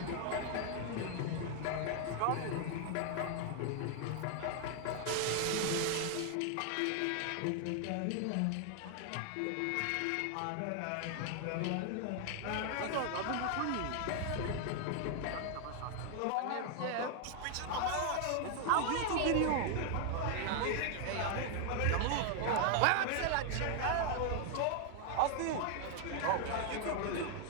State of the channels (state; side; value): different; both; correlation 0.00